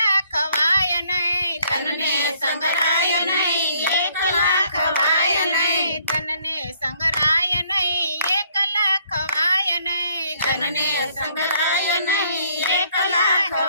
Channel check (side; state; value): both; inverted; correlation -0.65